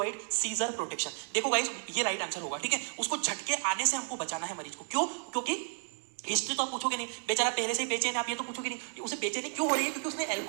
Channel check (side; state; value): left; silent; 56 dB below the other